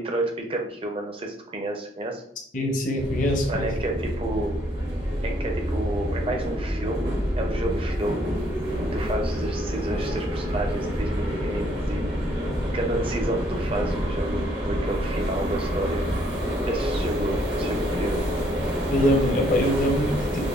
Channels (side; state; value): both; normal; correlation 0.67